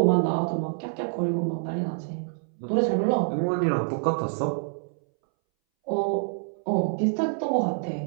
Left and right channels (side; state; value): left; silent; 61 dB below the other